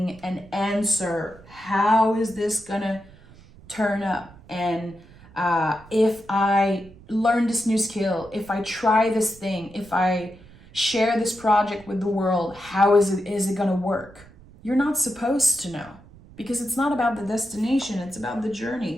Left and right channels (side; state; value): right; noise; rumble, 23 dB below the sound